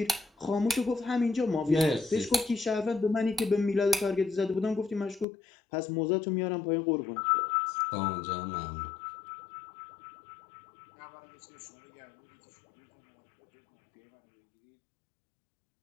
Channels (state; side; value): drops out; right; at 5.2 s